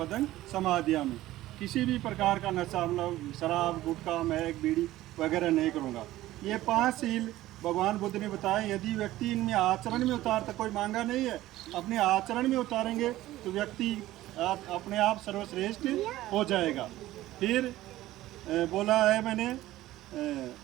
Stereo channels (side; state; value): left; quieter; 15.7 dB